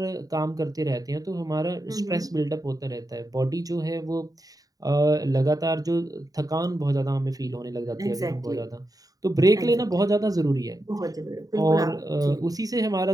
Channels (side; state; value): left; late; 0.18 ms